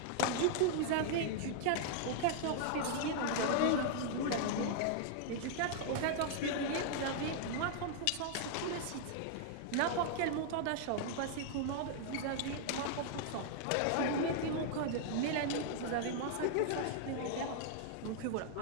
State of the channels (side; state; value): both; different; correlation -0.01